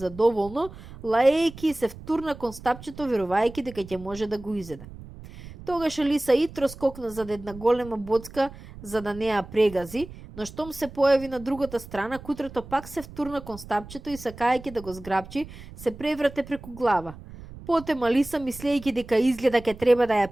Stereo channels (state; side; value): noise; right; rumble, 16 dB below the sound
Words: лаејќи и се втурна кон стапчето верувајќи дека ќе може да го изеде. Тогаш Алиса итро скокна зад една голема боцка за да не ја прегази, но штом се појави на другата страна, кутрето пак се втурна кон стапчето и сакајќи да го зграбчи, се преврате преку глава. Потем Алиса, мислејќи дека изгледа ке треба да